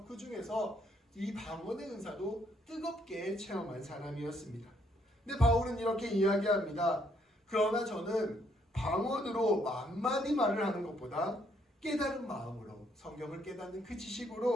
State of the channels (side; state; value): both; normal; correlation 0.70